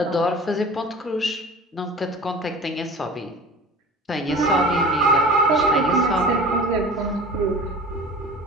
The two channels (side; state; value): both; normal; correlation 0.39